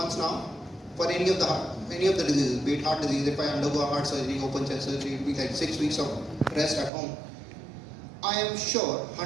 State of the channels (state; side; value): drops out; left; at 6.9 s